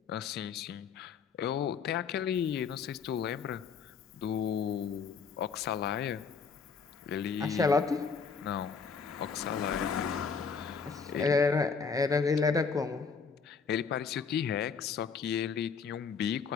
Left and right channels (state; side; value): quieter; right; 5.7 dB